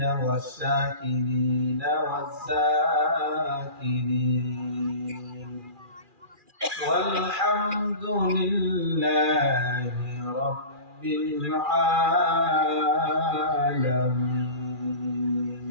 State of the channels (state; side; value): late; left; 2.4 ms